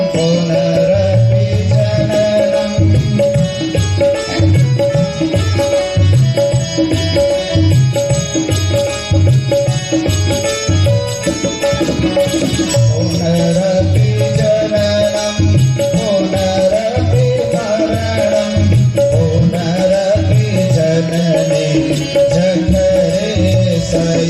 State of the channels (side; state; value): both; identical; correlation 1.00